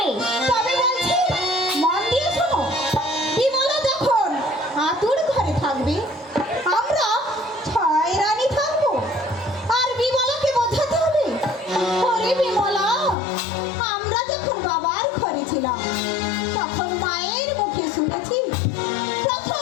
তবে বলছি, মন দিয়ে শোনো। বিমলা যখন আতুর ঘরে থাকবে, আমরা ছয় রানী থাকবো। আর বিমলাকে বোঝাতে হবে, ওরে বিমলা, আমরা যখন বাবার ঘরে ছিলাম তখন মায়ের মুখে শুনেছি প্রথম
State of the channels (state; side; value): drops out; right; at 13.2 s